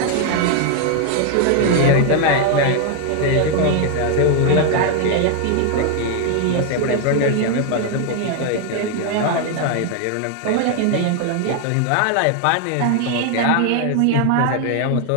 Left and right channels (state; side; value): different; both; correlation 0.00